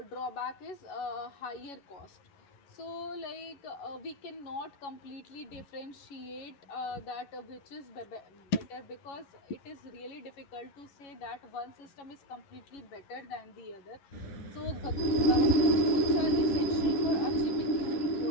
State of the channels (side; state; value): right; late; 11 ms